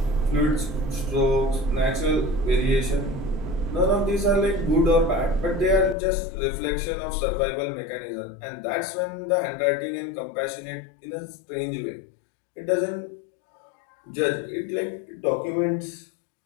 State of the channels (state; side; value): drops out; right; at 6.0 s